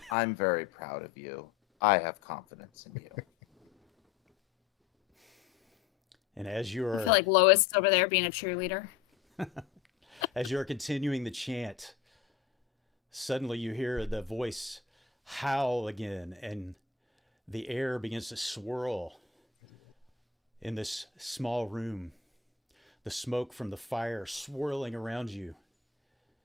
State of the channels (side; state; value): right; quieter; 7.2 dB